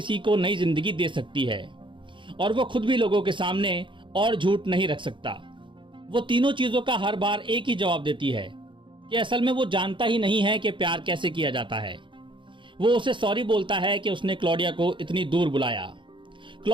को नई जिंदगी दे सकती है, और वो खुद भी लोगों के सामने और झूठ नहीं रख सकता। वो तीनों चीजों का हर बार एक ही जवाब देती है कि असल में वो जानता ही नहीं है कि प्यार कैसे किया जाता है। वो उसे सॉरी बोलता है कि उसने क्लॉडिया को इतनी दूर बुलाया।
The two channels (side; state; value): left; late; 0.24 ms